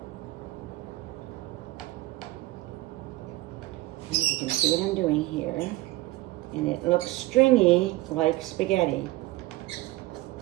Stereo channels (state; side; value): quieter; left; 18.8 dB